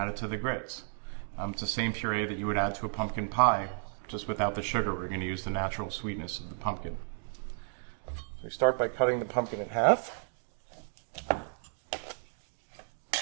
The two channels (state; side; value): silent; left; digital silence